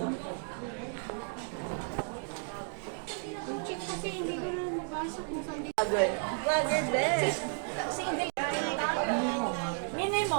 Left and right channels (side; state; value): left; silent; 56 dB below the other